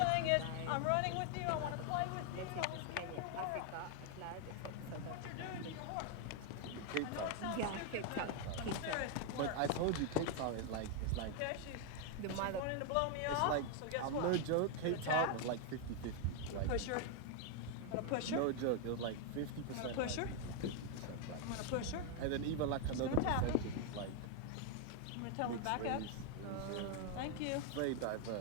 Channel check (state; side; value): different; both; correlation 0.00